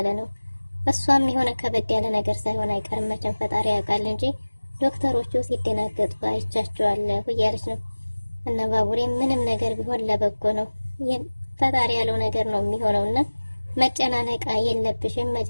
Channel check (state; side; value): inverted; both; correlation -1.00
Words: ነው። እሷም የሆነ ከበድ ያለ ነገር ሳይሆን አይቀርም መቼም ፈጣሪ ያውቃል እንጂ ዶክተሮቹ ሲደናገጡ አይቻቸዋለሁ እያለች ነው። እና ባቡሬም ምንም ነገር ቢሆን ለበጎ ነው፣ ፈጣሪ ያለው ነገር ነው የሚሆነውና መጨናነቅ የለብሽም